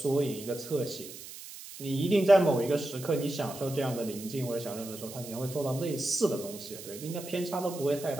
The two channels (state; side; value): noise; right; hiss, 13 dB below the sound